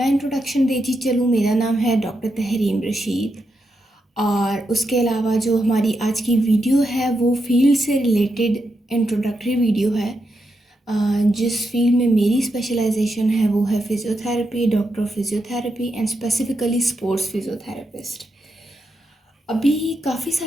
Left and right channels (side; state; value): both; normal; correlation 0.85